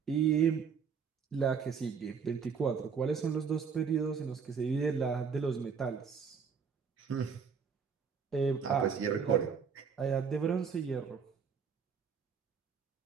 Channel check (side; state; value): left; quieter; 6.3 dB